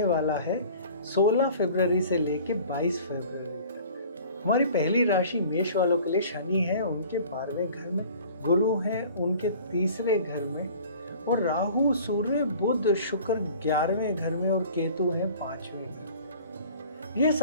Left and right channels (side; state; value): both; inverted; correlation -0.47